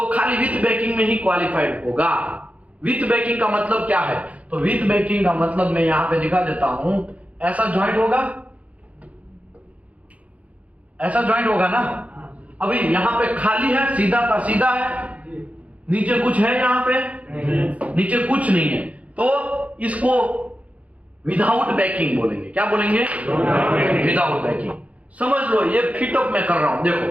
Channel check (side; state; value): left; late; 0.067 ms